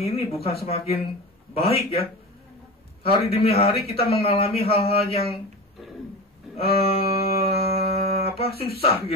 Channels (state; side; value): normal; both; correlation 0.27